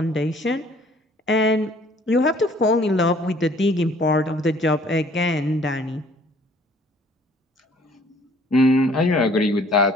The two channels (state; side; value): normal; both; correlation 0.56